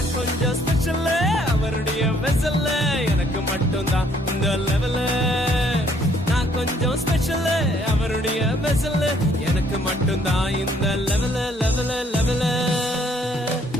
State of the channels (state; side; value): normal; both; correlation 0.64